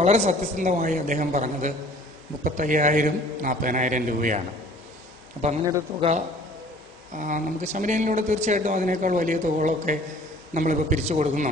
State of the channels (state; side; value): normal; both; correlation 0.51